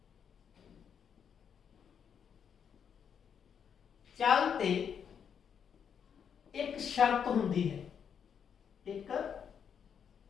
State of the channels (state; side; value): quieter; right; 7.6 dB